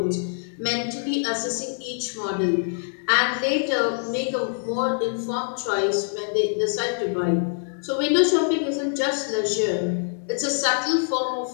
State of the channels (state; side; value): silent; right; digital silence